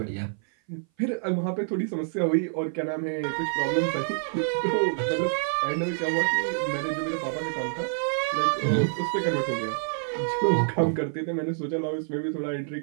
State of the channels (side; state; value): left; silent; 57 dB below the other